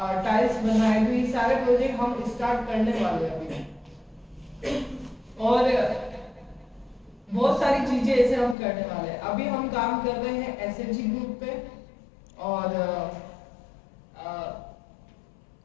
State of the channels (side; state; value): right; drops out; at 8.6 s